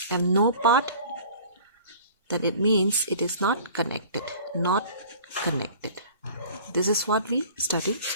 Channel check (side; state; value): both; inverted; correlation -0.46